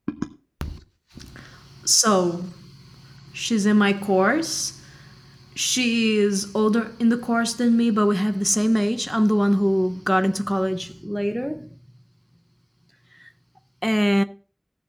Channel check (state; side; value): identical; both; correlation 1.00